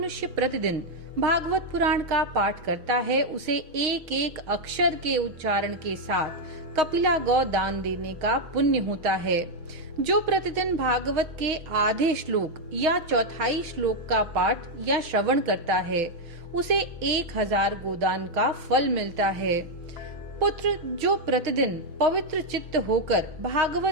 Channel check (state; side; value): late; left; 6.4 ms